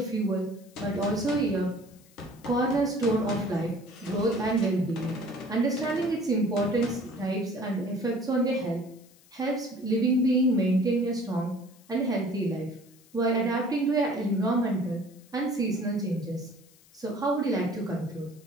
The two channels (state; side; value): noise; left; hiss, 28 dB below the sound